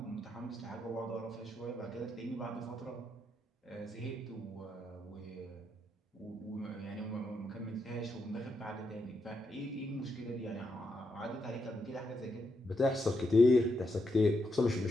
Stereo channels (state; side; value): normal; both; correlation 0.82